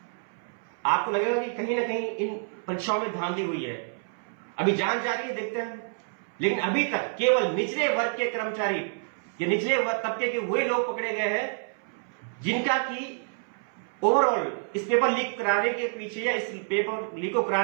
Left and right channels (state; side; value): silent; left; 59 dB below the other